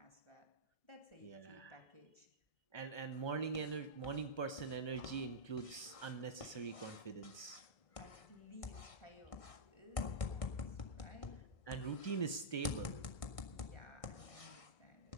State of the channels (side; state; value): right; late; 1.3 ms